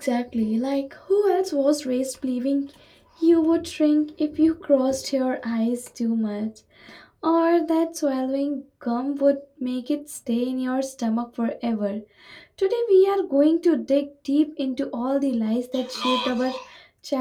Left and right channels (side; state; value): both; identical; correlation 1.00